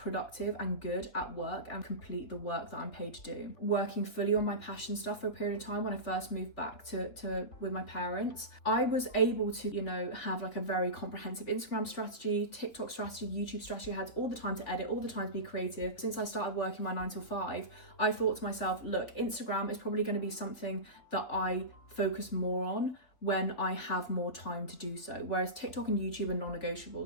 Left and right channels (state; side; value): late; right; 3.7 ms